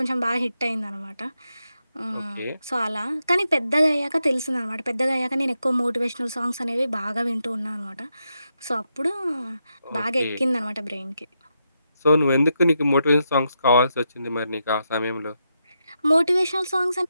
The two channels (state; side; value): inverted; both; correlation -0.84